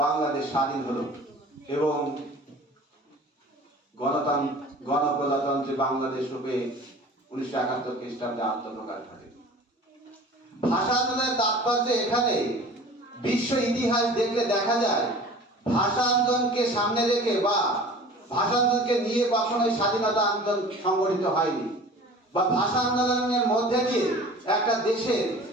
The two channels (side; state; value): both; normal; correlation 0.43